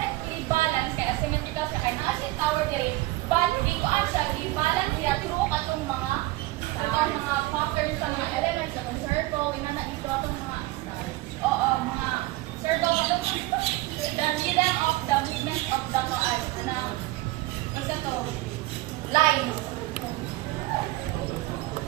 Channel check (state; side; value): quieter; left; 18.9 dB